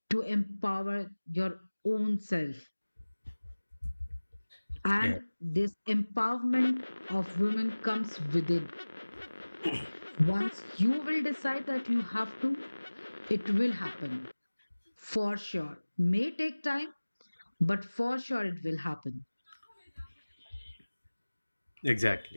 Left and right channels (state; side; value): inverted; both; correlation -1.00